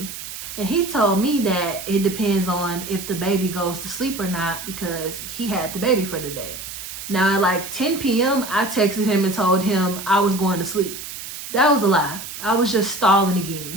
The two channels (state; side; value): noise; right; hiss, 10 dB below the sound